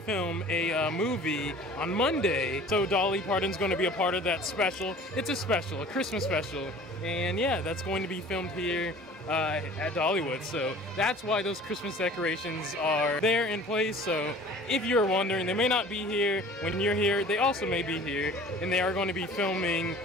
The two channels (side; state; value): both; normal; correlation 0.46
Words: film, a movie on Monday. So Dolly Parton's going to be a part of that special. It's a special, a Christmas special. And yeah, that's going to be filmed here at Dollywood. So that's why those Christmas decorations are there in place. So if you're wondering, they may not be here when you're here. They also may be here, and they are going to be filming